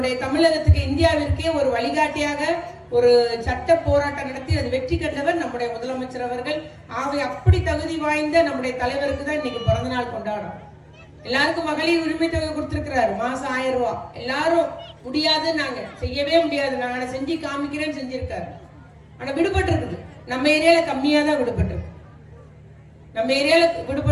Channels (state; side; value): identical; both; correlation 1.00